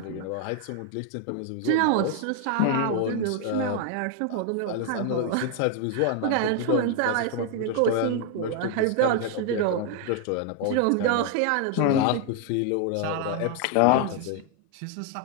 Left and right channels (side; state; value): both; different; correlation 0.00